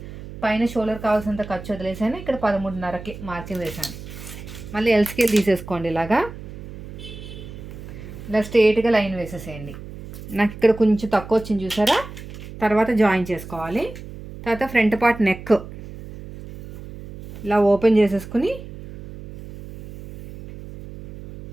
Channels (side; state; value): right; noise; hum, 13 dB below the sound